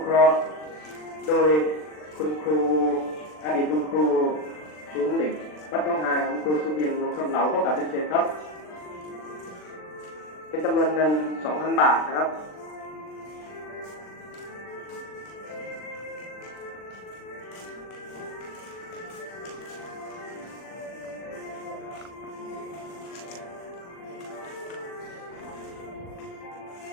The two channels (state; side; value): late; right; 39 ms